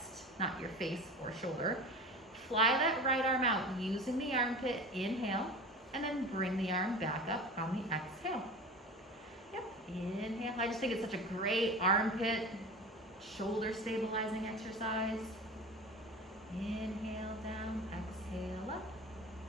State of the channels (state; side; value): normal; both; correlation 0.34